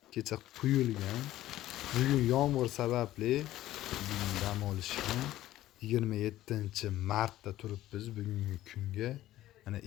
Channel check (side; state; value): right; quieter; 14.5 dB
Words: kecha quyilgan. Bugun yomg'ir sababli bugun dam olishgan. 27-martda turibmiz bugungi kunga. Mana